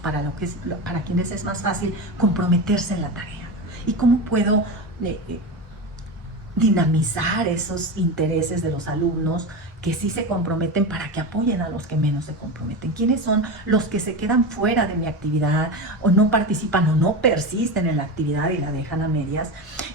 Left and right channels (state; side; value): normal; both; correlation 0.22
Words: quienes es más fácil comprometerse en la tarea? ¿Y cómo puedo dinamizar esos intereses de los alumnos que sí se comprometen para que apoyen a los que menos se comprometen? ¿Quiénes son los que se quedan fuera de mi actividad o no participan o no persisten en la actividad y la dejan a medias?